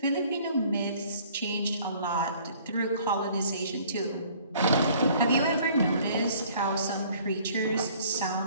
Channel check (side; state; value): both; inverted; correlation -0.55